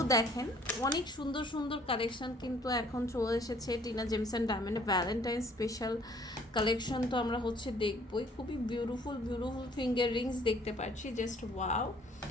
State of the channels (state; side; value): normal; both; correlation 0.58